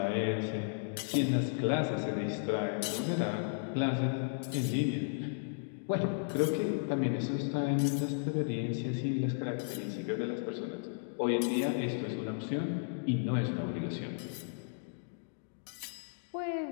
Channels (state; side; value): silent; right; digital silence